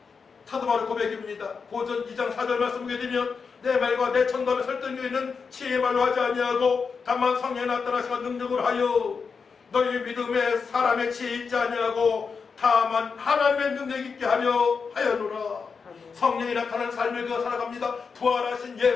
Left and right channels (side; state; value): right; quieter; 5.4 dB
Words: 사도 바울의 고백입니다. 고전 2장 4절 말씀 보게 되면 내 말과 내 천담에 설득력 있는 지혜의 말로 하지 아니하고 다만 성령에 나타나시가 능력을 하여 너희 믿음에 사람의 지혜 있지 아니하고 다만 하나님의 능력 있게 하려노라. 성령이 나타난 삶을 그어 살아갑니다. 부활하신